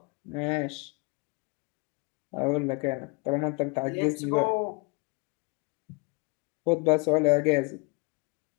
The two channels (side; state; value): right; quieter; 30.0 dB